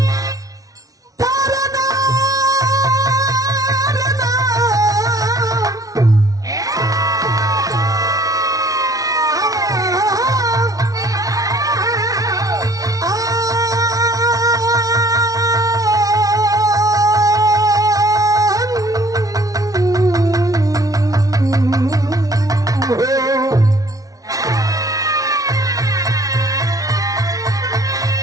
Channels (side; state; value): left; late; 0.18 ms